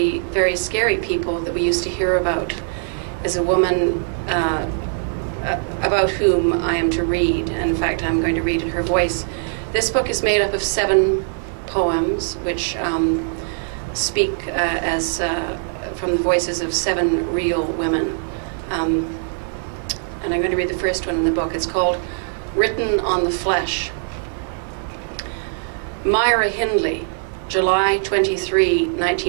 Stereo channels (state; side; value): silent; left; digital silence